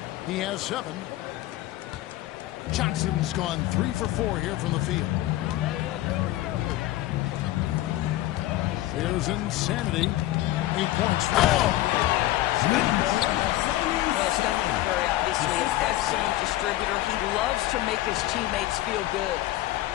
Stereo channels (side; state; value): right; quieter; 15.8 dB